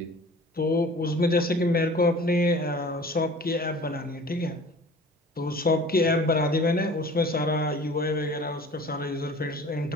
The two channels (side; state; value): both; normal; correlation 0.45